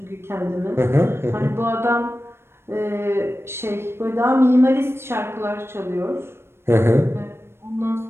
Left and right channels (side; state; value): left; late; 0.12 ms